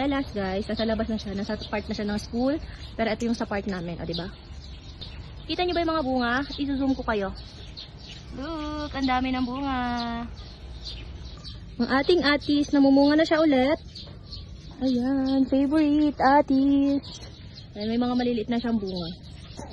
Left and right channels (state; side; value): identical; both; correlation 1.00